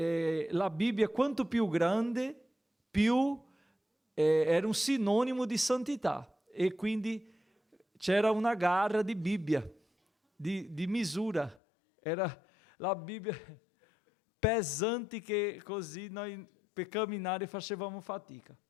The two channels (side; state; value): right; drops out; at 11.6 s